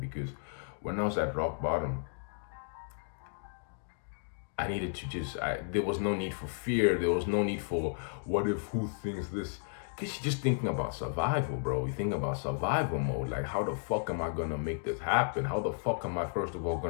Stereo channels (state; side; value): silent; right; digital silence